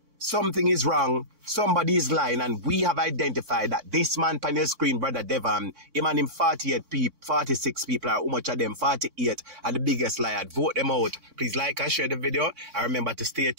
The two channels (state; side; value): late; left; 4.5 ms